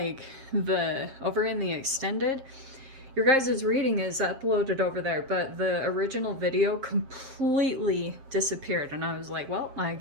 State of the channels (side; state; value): left; late; 7.5 ms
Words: the over in the extended, your guys' reading is uploaded over there, but the original video completely disappeared. And I was like, well, I